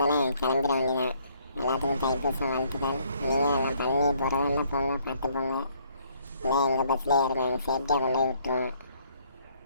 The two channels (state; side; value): inverted; both; correlation -0.65